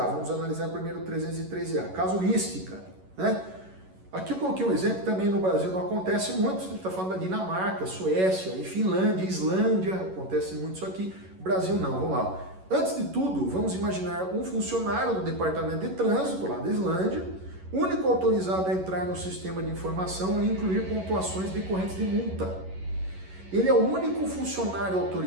vamos analisar primeiro o 313A, casuística, né? Aqui eu coloquei um exemplo, também no Brasil não acontece muito, a gente está falando da Dinamarca, Suécia, e Finlândia, Islândia, acontece muito isso aqui, Brasil não, vamos lá. Antes de tudo, vamos imaginar um funcionário do Departamento de Trânsito, lá da Islândia, único autorizado a entrar no sistema de informação e incluir pontuações decorrentes de multa. Ele é o único funcionário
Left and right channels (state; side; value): late; left; 11 ms